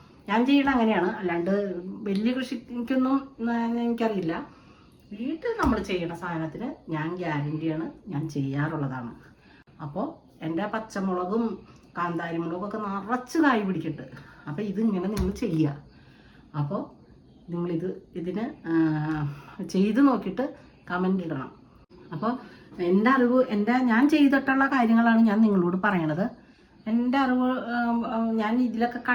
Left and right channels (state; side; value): identical; both; correlation 1.00